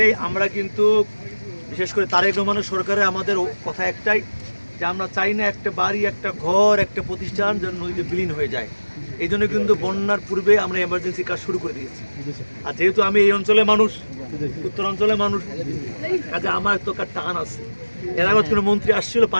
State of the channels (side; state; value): both; inverted; correlation -1.00